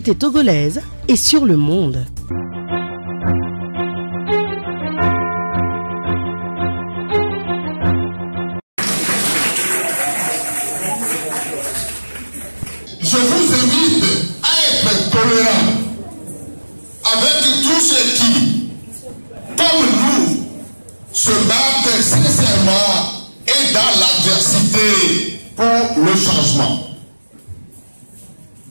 togolaise et sur le monde. Je vous invite à être tolérant avec tous ceux qui, comme nous, se battent sincèrement et dans l'adversité pour le changement.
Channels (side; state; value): both; inverted; correlation -1.00